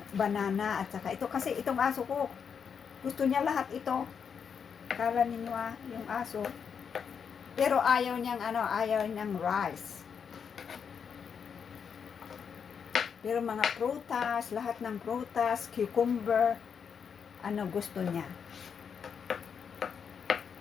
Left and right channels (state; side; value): quieter; right; 6.8 dB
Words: banana at saka ito, kasi itong aso ko gusto niya lahat ito. Kala ninyo yung aso. Pero ayaw niyang rice. Pero mga prutas, lahat ng prutas, cucumber, gusto niya.